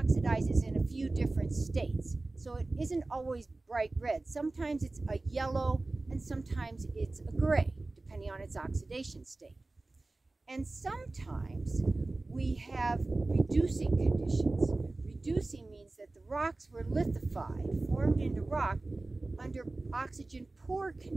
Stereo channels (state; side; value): quieter; left; 3.1 dB